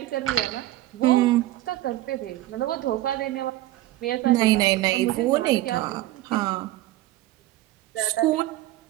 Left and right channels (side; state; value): left; quieter; 15.7 dB